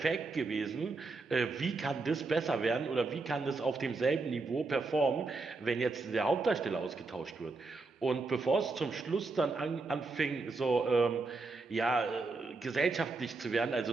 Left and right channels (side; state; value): left; quieter; 3.7 dB